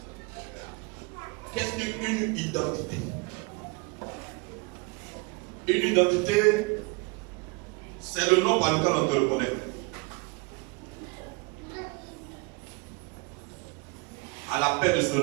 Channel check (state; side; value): quieter; left; 29.0 dB